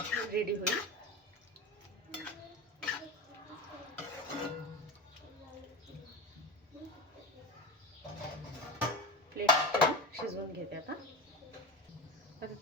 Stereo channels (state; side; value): normal; both; correlation 0.25